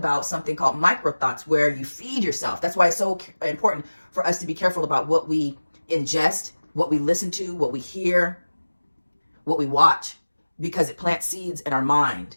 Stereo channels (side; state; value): both; inverted; correlation -1.00